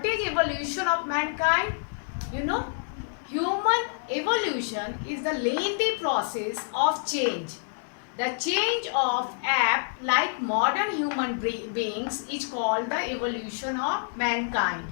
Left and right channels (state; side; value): silent; right; digital silence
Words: is evolution of mankind? You know, human evolution is the lengthy process of change. The change of ape like modern human beings is called the evolution of mankind.